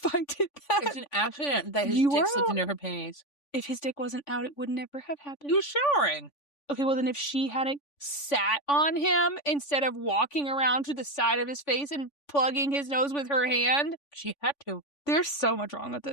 I did that. It's an accident that his dick slipped into her panties. If his dick wasn't out, it would never have happened. He was showering. Okay, well then if she hadn't sat on him instead of walking around to the side of his face and plugging his nose with her hand. She had to. There's so much wrong with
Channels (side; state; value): right; late; 3.5 ms